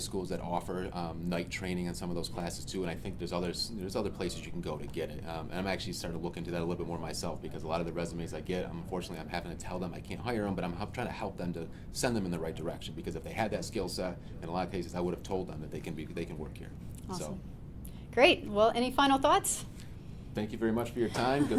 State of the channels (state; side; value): identical; both; correlation 1.00